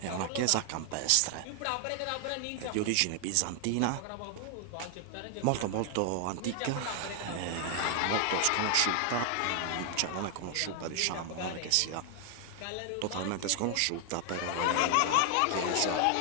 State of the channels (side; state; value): both; different; correlation 0.00